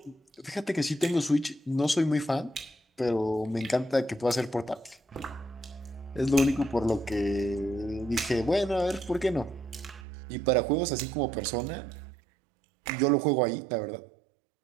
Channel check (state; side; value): drops out; left; at 10.1 s